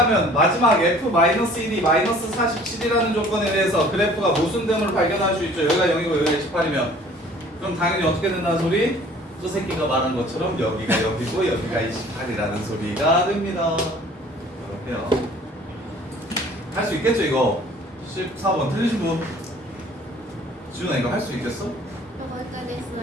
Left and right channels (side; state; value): both; normal; correlation 0.51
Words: 마지막 f-1이 -47이라는 조건에 대해서 그래프가 모순됨을 발견할 수 있죠. 여기가 0이고 여기가 18이면 그럼 당연히 어떻게 된다는 소리? 저 새끼가 말한 것처럼 여기가 0이고 여기가 28이라는 소리가 됩니다. 이렇게요. 할 수 있겠죠 이거? 14번 틀리신 분? 지훈아 이거 할 수 있겠어? 저 거기까지